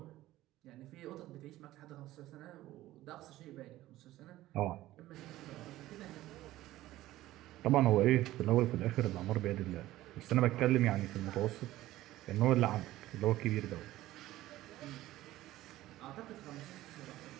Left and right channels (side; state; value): left; quieter; 15.8 dB